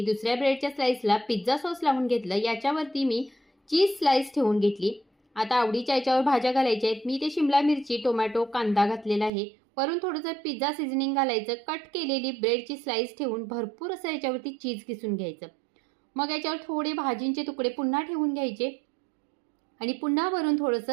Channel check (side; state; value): left; drops out; at 9.3 s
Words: दुसऱ्या ब्रेडच्या स्लाइसला पिझ्झा सॉस लावून घेतलं, याच्यावरती मी चीज स्लाइस ठेवून घेतली। आता आवडीच्या याच्यावर भाज्या घालायच्या आहेत। मी ते शिमला मिरची, टोमॅटो, कांदा घातलेला आहे। वरून थोडंसं पिझ्झा सीझनिंग घालायचं। कट केलेली ब्रेडची स्लाइस ठेवून भरपूर असं याच्यावरती चीज किसून घ्यायचं। मग याच्यावर थोडे भाजींचे तुकडे पुन्हा ठेवून घ्यायचे आणि पुन्हा वरून